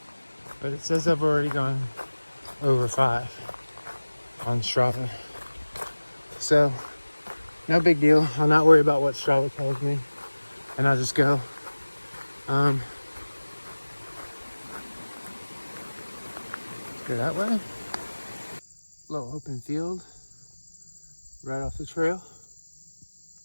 but it says I've already gone over 5 on Strava. So, no big deal. I'll not worry about what Strava tells me, and I'll just go. Let's go that way. Little open field right off the trail.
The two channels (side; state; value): both; inverted; correlation -1.00